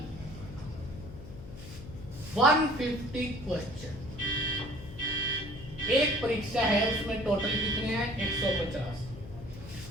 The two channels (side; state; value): left; noise; hum, 13 dB below the sound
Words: 150 क्वेश्चन, एक परीक्षा है उसमें टोटल कितने हैं 150।